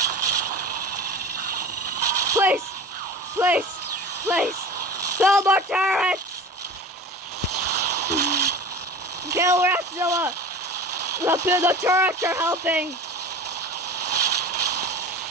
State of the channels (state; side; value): normal; both; correlation 0.36